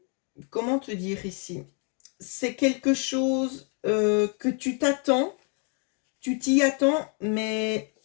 Comment te dire ici? C'est quelque chose que tu t'attends, tu t'y attends, mais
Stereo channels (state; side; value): quieter; right; 39.6 dB